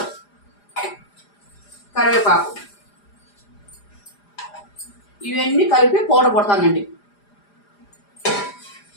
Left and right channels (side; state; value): right; late; 4.9 ms